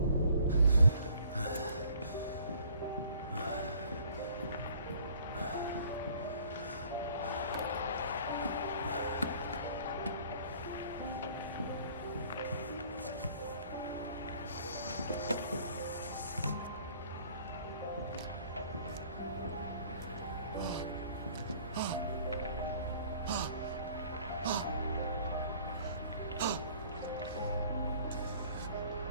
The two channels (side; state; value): both; inverted; correlation -0.55